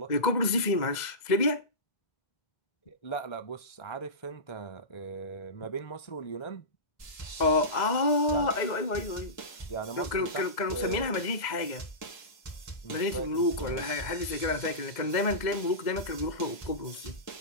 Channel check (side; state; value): right; late; 2.0 ms